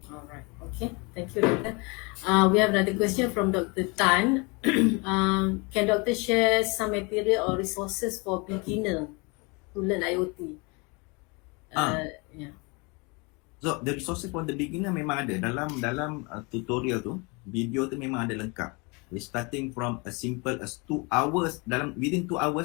Alright, okay. Thank you, Doctor. We have another question from Dr. Tan. Can Doctor share some material or resources for beginner to learn IoT? Yeah. So the resources for the beginner memang ada dalam tutorial tu, video tu memang ada lengkap. We're starting from as simple as 2 hours. Within 2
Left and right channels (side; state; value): right; quieter; 29.3 dB